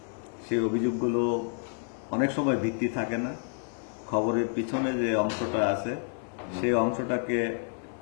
সেই অভিযোগগুলো অনেক সময় ভিত্তি থাকে না। খবরের পিছনে যে অংশটা আছে সেই অংশটাকে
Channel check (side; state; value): right; silent; 58 dB below the other